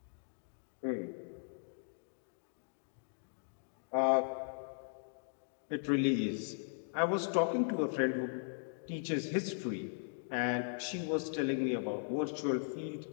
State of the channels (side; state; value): right; silent; digital silence